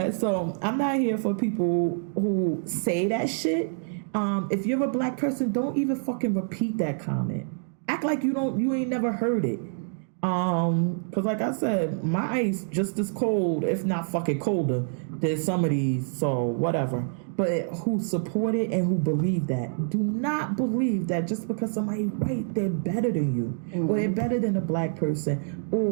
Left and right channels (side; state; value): left; silent; digital silence